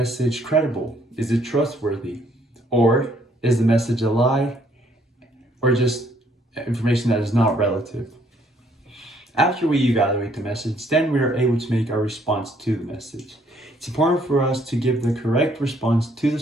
credible? Is it trustworthy? Or is the message a lie? Or just information that is not relative? After we evaluate the message, then we are able to make our response to the message. It's important for us to give the correct response to the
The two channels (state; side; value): normal; both; correlation 0.66